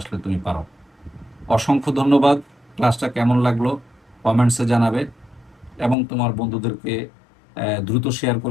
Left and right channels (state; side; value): drops out; right; at 6.0 s